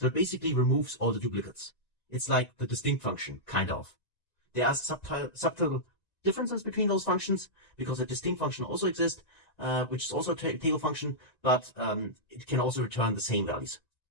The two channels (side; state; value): right; late; 1.9 ms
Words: it basically removes all the duplicates. It's like the distinct function, kind of. There are subtle differences between those functions because the distinct function also exists, which is also a table function, but it can also return the same values.